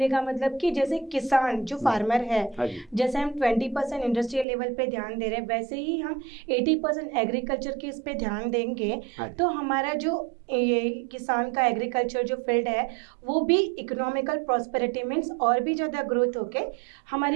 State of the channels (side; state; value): left; drops out; at 4.5 s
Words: का मतलब कि जैसे किसान जो फार्मर है, हाँ जी। जैसे हम 20% इंडस्ट्रियल लेवल पे ध्यान दे रहे हैं, वैसे ही हम 80% एग्रीकल्चर के इस पे ध्यान देंगे हाँ जी। तो हमारा जो ये किसान का एग्रीकल्चर जो फील्ड है वो भी इकोनॉमिकल प्रॉस्पेरिटी मीन्स और भी ज़्यादा ग्रोथ होके